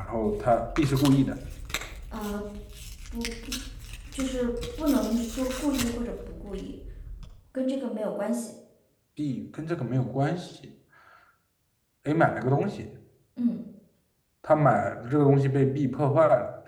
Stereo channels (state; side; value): identical; both; correlation 1.00